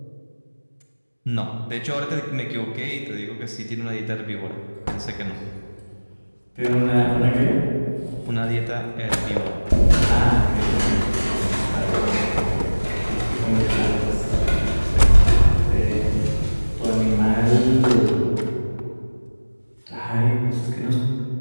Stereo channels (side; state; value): both; inverted; correlation -1.00